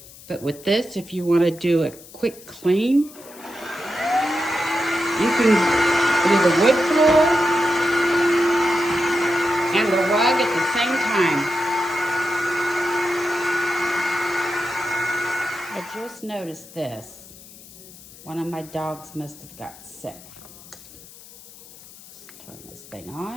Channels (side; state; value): left; noise; hiss, 20 dB below the sound